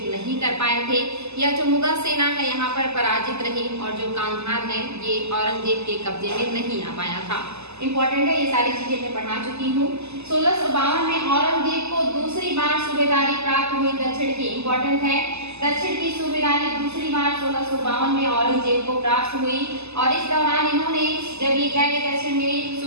नहीं कर पाए थे, या जो मुगल सेना है यहाँ पर पराजित रही, और जो कंधार है ये औरंगजेब के कब्जे में नहीं आ पाया था। इम्पोर्टेंट है, ये सारी चीजें मैं पढ़ा चुकी हूँ। 1652 में औरंगजेब को दूसरी बार सूबेदारी प्राप्त हुई दक्षिण की। इम्पोर्टेंट है, दक्षिण की सूबेदारी दूसरी बार 1652 में औरंगजेब को प्राप्त हुई, और इस दौरान इन्होंने जब ये गए दक्षिण में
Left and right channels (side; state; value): left; late; 0.80 ms